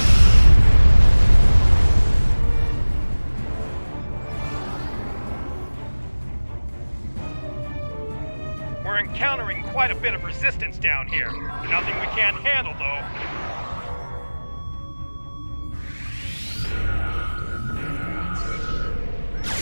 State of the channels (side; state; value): both; inverted; correlation -1.00